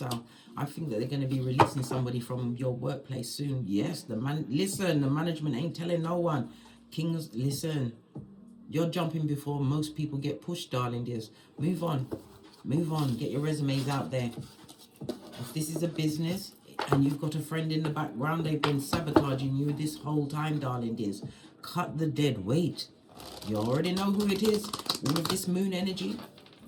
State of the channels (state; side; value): identical; both; correlation 1.00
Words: I think that they're going to be releasing somebody from your workplace soon. Yes, the management ain't telling no one. Kings, listen. You're jumping before most people get pushed, darling dears. Move on. Move on. Get your resumes out there. If this is a business and you've got a friend in the background, they've been sabotaging you this whole time, darling dears. Cut the dead weight. You already know who it is with this moon energy.